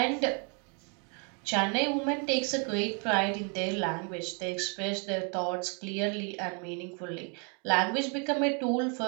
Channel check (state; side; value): quieter; left; 37.1 dB